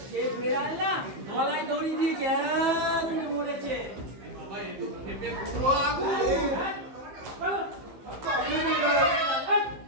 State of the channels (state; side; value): late; left; 15 ms